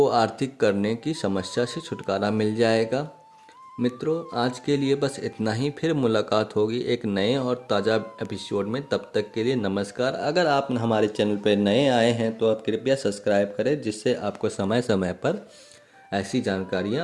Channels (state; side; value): identical; both; correlation 1.00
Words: आर्थिक करने की समस्या से छुटकारा मिल जाएगा। मित्रों, आज के लिए बस इतना ही। फिर मुलाकात होगी एक नए और ताज़ा एपिसोड में। तब तक के लिए नमस्कार। अगर आप हमारे चैनल पर नए आए हैं तो आप कृपया सब्सक्राइब करें, जिससे आपको समय समय पर ऐसी